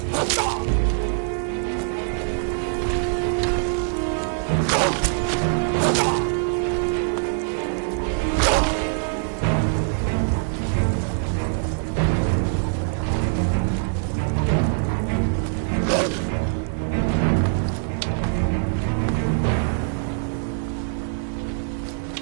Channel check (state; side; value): silent; left; digital silence